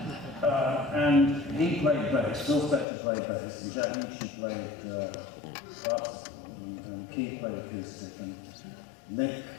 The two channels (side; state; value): right; drops out; at 2.9 s